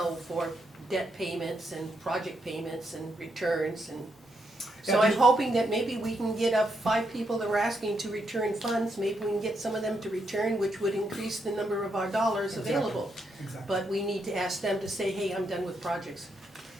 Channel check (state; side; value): normal; both; correlation 0.79